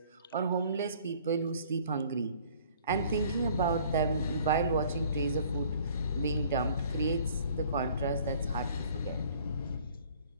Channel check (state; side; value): inverted; both; correlation -0.55